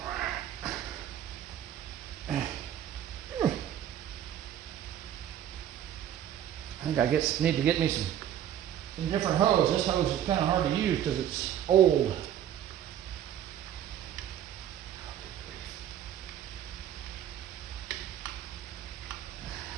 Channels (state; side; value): quieter; left; 10.6 dB